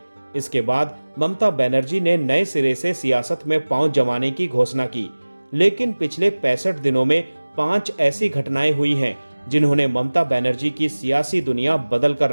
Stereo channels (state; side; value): inverted; both; correlation -1.00